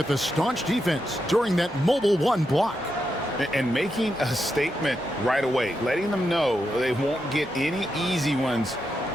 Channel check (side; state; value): both; normal; correlation 0.85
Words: the staunch defense during that mobile 1 block. And making a statement right away, letting them know they won't get any easy ones